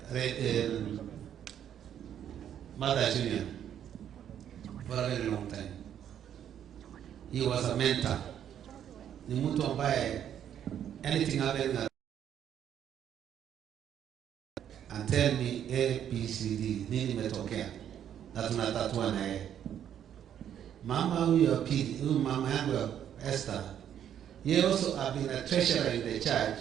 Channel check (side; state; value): left; quieter; 9.8 dB